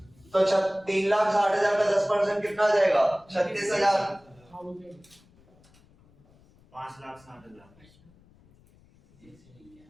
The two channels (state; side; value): noise; left; rumble, 29 dB below the sound